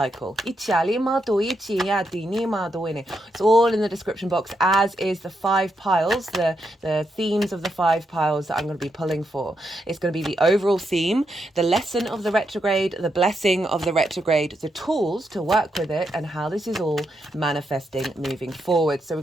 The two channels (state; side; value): normal; both; correlation 0.82